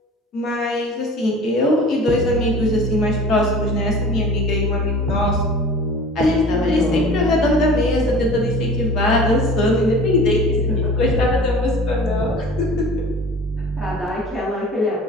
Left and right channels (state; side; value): normal; both; correlation 0.42